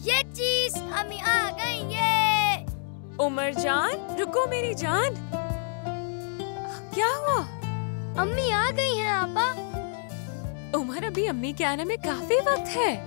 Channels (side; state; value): right; silent; digital silence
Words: ये चीज अम्मी आ गई ये। उमर जान रुको मेरी जान, क्या हुआ? अम्मी आ गई हैं आपा। उमर अभी अम्मी के आने में काफी वक्त